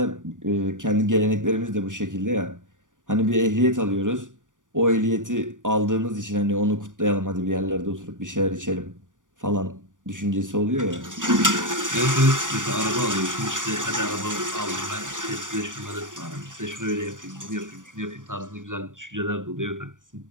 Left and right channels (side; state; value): left; late; 0.87 ms